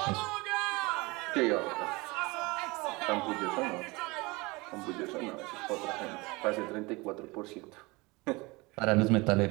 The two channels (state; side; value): quieter; left; 24.4 dB